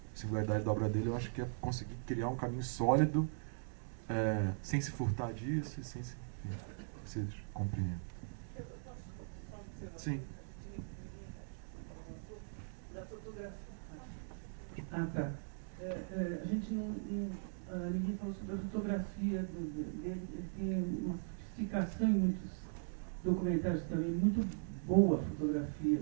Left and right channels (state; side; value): silent; left; digital silence